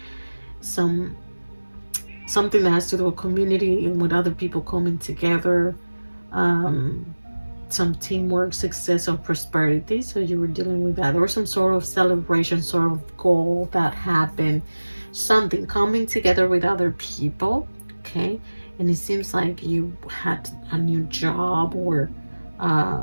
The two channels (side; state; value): both; inverted; correlation -1.00